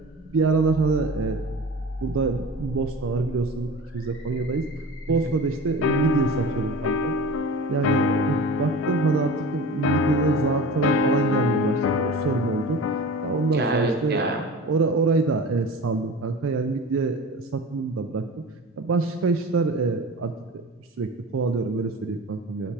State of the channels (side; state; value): both; normal; correlation 0.35